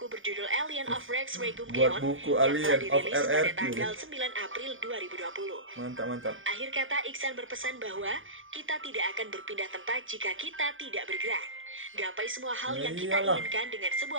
berjudul Alien of Rex Regum Geon yang telah dirilis pada tanggal 9 April 2020. Mantap. Akhir kata, Iksan berpesan bahwa kita tidak akan berpindah tempat jika kita tidak bergerak. Gapai semua hal yang kita inginkan dengan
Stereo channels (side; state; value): left; late; 0.58 ms